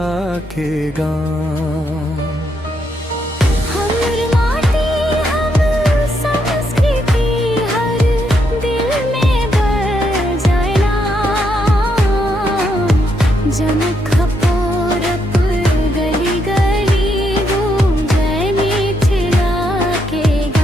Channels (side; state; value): both; normal; correlation 0.78